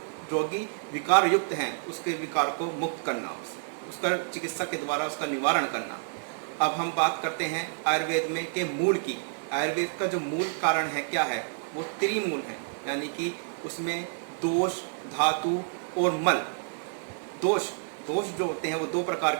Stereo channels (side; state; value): left; silent; digital silence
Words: रोगी विकार युक्त हैं उसके विकार को मुक्त करना, उसका चिकित्सा के द्वारा उसका निवारण करना। अब हम बात करते हैं आयुर्वेद में के मूल की। आयुर्वेद का जो मूल कारण है क्या है, वो त्रिमूल है, यानी कि उसमें दोष, धातु और मल। दोष जो होते हैं वो 2 प्रकार